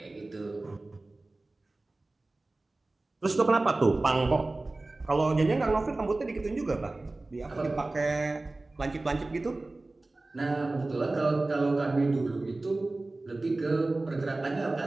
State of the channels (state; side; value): quieter; left; 3.0 dB